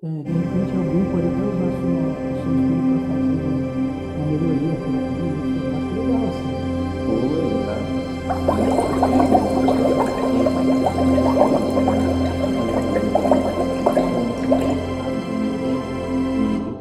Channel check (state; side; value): identical; both; correlation 1.00